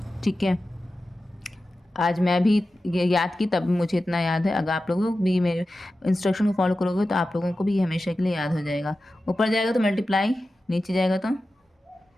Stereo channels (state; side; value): normal; both; correlation 0.93